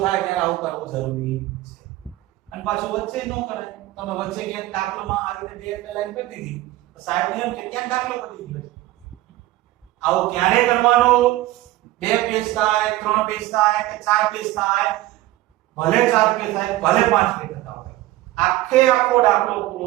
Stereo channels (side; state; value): left; quieter; 16.7 dB